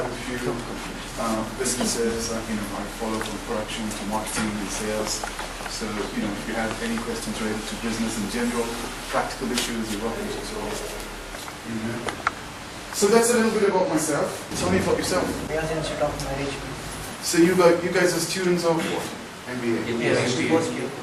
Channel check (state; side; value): identical; both; correlation 1.00